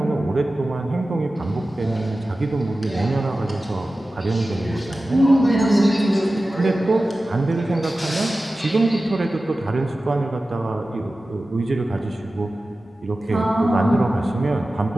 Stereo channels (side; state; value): both; normal; correlation 0.95